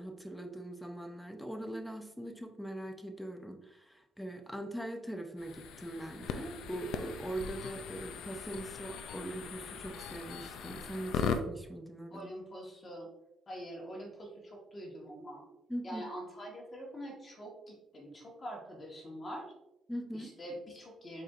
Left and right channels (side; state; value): both; normal; correlation 0.73